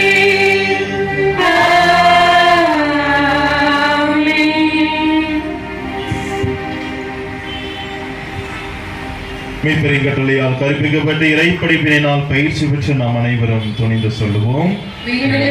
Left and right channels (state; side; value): identical; both; correlation 1.00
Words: மீட்பரின் கட்டளையால் கற்பிக்கப்பட்ட இறைப்படிப்பினால் பயிற்சி பெற்று நாம் அனைவரும் துணிந்து சொல்லுவோம்.